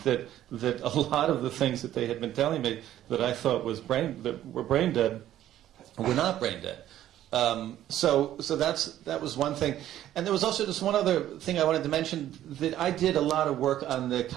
that a lot of the things that they had been telling me that I thought were brain dead were not brain dead. So that was one thing. And there was also just one other thing I wanted to mention, that I did a lot of work on the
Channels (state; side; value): quieter; left; 12.5 dB